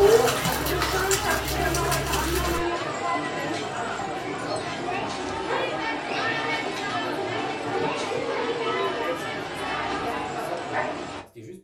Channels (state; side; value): identical; both; correlation 1.00